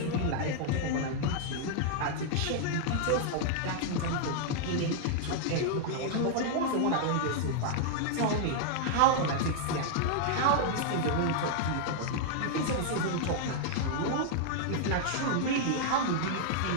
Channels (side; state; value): both; different; correlation -0.01